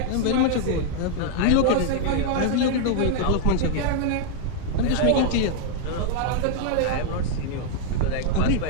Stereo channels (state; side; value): different; both; correlation 0.00